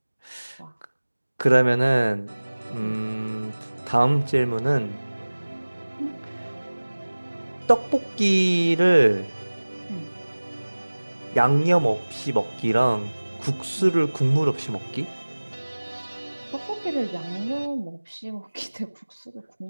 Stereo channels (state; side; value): inverted; both; correlation -1.00